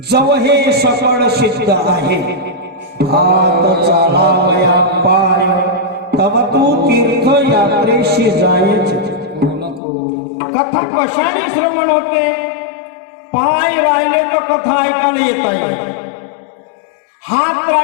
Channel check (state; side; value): drops out; right; at 9.8 s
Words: हे सकळ सिद्ध आहे, हात चालावया पाय, तव तू तीर्थ यात्रेशी जायचे. कथा कशाने श्रवण होते? पाय राहिले तर कथा ऐकायला येता येईल, हात